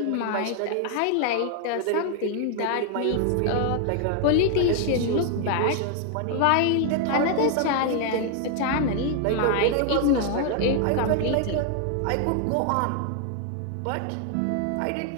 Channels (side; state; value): both; different; correlation 0.00